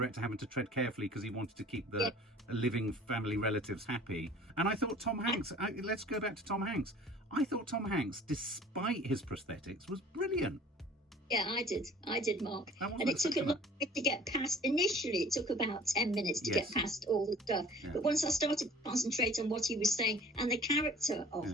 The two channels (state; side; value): normal; both; correlation 0.49